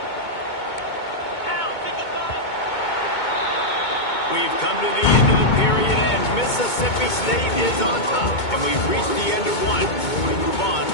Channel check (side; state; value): right; late; 2.2 ms